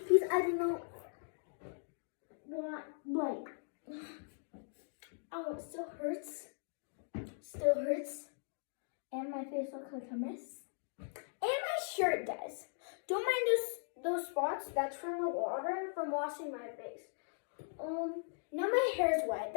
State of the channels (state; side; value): silent; right; digital silence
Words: I don't know what, like, oh, it still hurts. Still hurts. And my face looks like a mess. And my shirt does. Don't mind those spots. That's from the water from washing my face. Now my hair's wet.